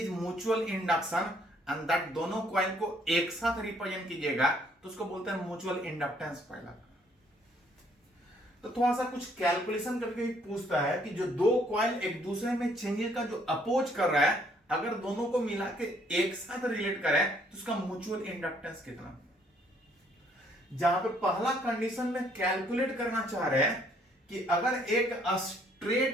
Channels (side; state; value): both; normal; correlation 0.65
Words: mutual induction and that दोनों कॉइल को एक साथ रिप्रेजेंट कीजिएगा तो उसको बोलते हैं म्यूचुअल इंडक्टेंस पहला। तो थोड़ा सा कुछ कैलकुलेशन करके ही पूछता है कि जो दो कॉइल एक दूसरे में चेंजेस का जो अपोज कर रहा है, अगर दोनों को मिला के एक साथ रिलेट करें तो उसका म्यूचुअल इंडक्टेंस कितना। जहां पे पहला कंडीशन में कैलकुलेट करना चाह रहे हैं कि अगर एक